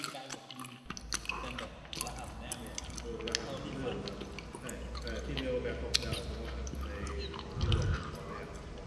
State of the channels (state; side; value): identical; both; correlation 1.00